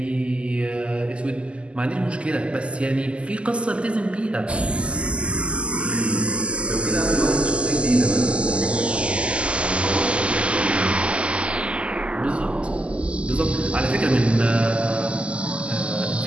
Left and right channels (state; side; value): late; left; 0.054 ms